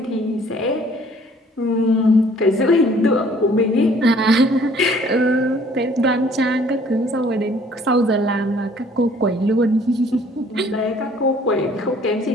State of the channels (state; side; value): normal; both; correlation 0.57